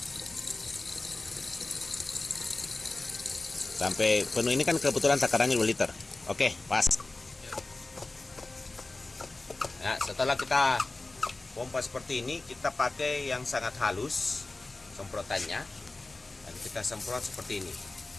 Sampai penuh, ini kan kebetulan takarannya 2 liter. Oke, pas. Nah, setelah kita pompa seperti ini, kita pakai yang sangat halus semprotannya. Dan kita semprot seperti ini.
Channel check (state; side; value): quieter; right; 3.1 dB